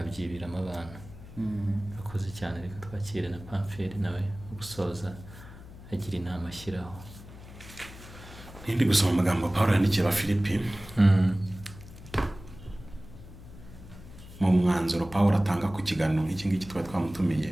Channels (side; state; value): left; noise; hum, 16 dB below the sound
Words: abantu. Akoze cyane. Reka twakire na Pamferi nawe gusoza agira inama ashyiraho. Ndi gusoma amagambo Pawulo yandikiye Abafilipi. Mu mwanzuro Pawulo atanga ku kiganiro nk'iki ngiki twari twamutumiye,